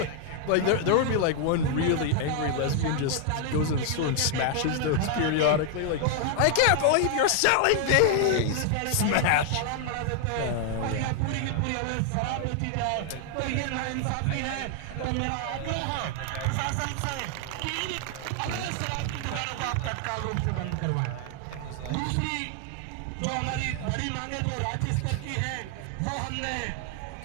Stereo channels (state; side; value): different; both; correlation 0.00